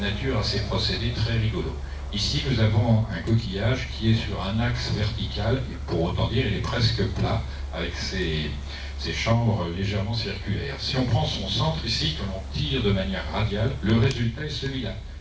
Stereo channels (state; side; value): identical; both; correlation 1.00